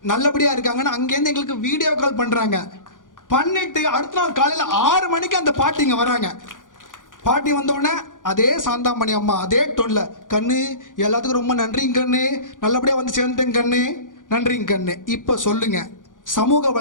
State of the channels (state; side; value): late; right; 0.88 ms